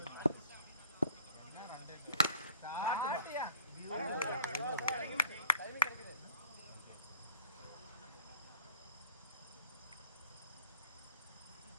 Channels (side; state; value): both; inverted; correlation -0.51